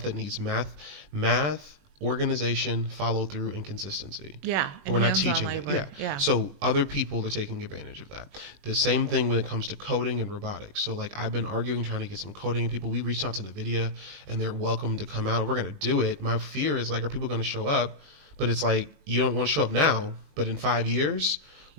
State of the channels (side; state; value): left; late; 20 ms